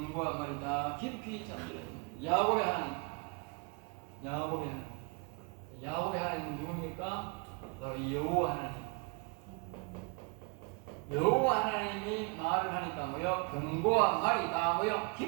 말이다 깊이 잠들었다. 야곱의 하나님, 야곱의 하나님 누굽니까? 바로 여호와 하나님. 여호와 하나님이 말을 하니까 뭐요? 병과 말이 다 뭐요?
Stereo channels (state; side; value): quieter; left; 33.2 dB